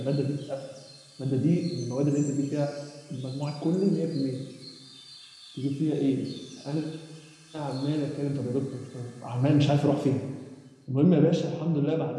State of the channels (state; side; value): identical; both; correlation 1.00